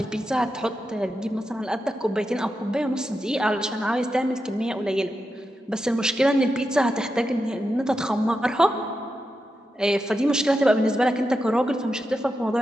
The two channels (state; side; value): normal; both; correlation 0.88